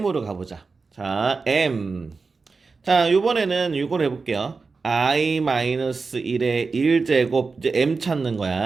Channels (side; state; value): left; quieter; 4.4 dB